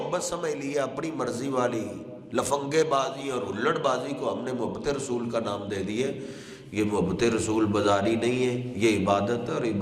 سمجھ لیا، اپنی مرضی والی لفنگے بازی اور ہلڑ بازی کو ہم نے محبت رسول کا نام دے دیے۔ یہ محبت رسول بازاری نہیں ہے، یہ عبادت ہے، اور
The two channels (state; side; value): identical; both; correlation 1.00